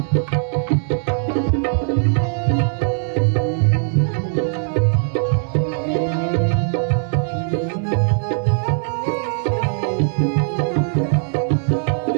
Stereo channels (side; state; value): left; silent; digital silence